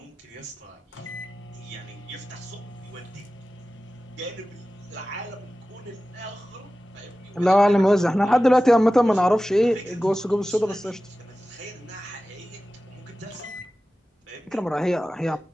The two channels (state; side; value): normal; both; correlation 0.96